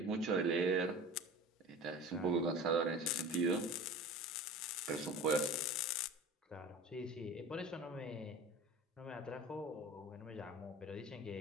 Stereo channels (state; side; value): normal; both; correlation 0.37